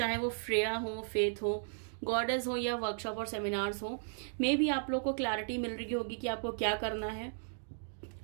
वो फ्रेया हो, फेथ हो, गॉडेस हो या वर्कशॉप और सेमिनार्स हो. मे भी आप लोग को क्लैरिटी मिल रही होगी कि आपको क्या करना है.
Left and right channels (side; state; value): left; silent; digital silence